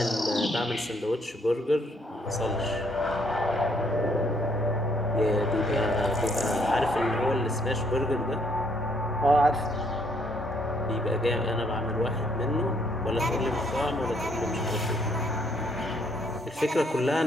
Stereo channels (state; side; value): normal; both; correlation 0.69